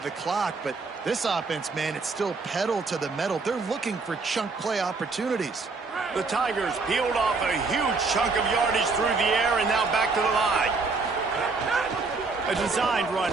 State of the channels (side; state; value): left; quieter; 4.1 dB